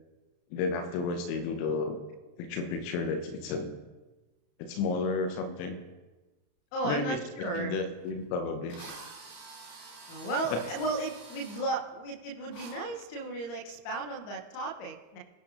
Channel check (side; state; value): right; late; 34 ms